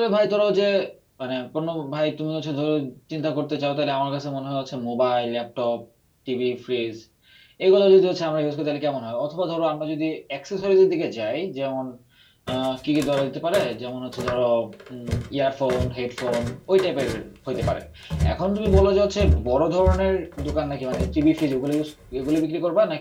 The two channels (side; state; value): both; identical; correlation 1.00